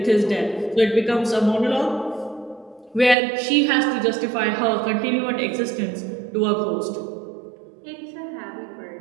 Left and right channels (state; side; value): drops out; left; at 3.2 s